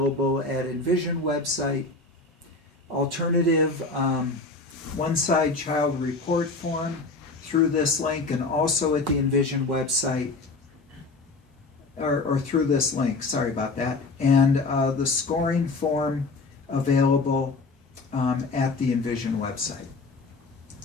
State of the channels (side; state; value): right; quieter; 3.6 dB